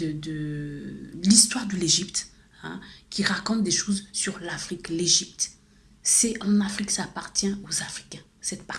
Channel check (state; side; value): identical; both; correlation 1.00